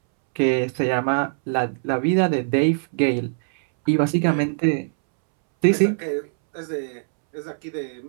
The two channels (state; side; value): silent; left; 64 dB below the other